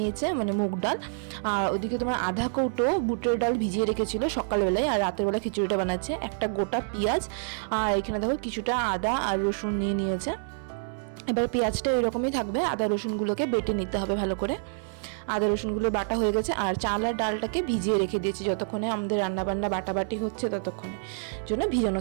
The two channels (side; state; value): left; silent; 60 dB below the other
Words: মানে মুগ ডাল। আর ওদিকে তোমার আধা কৌটো বুটের ডাল ভিজিয়ে রেখেছিল সকালবেলায়, আর রাতের বেলা খিচুড়িটা বানাচ্ছে। একটা গোটা পেঁয়াজ, আর এখানে দেখো কিছুটা আদা আর রসুন নিয়ে নিয়েছে। এবার পেঁয়াজটা এরকমই থাকবে, আদা রসুনগুলোকে বেটে নিতে হবে ভালো করে। আদা রসুনগুলো বাটা হয়ে গেছে, আর চাল আর ডালটাকে ভিজিয়ে রেখে দিয়েছি, যতক্ষণে আমাদের রান্নাবান্না বাটাবাটি হচ্ছে ততক্ষণে জন্য